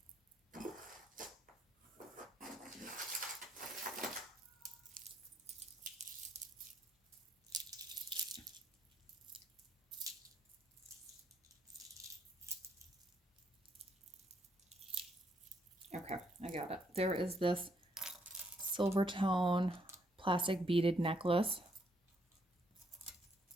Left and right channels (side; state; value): both; normal; correlation 0.72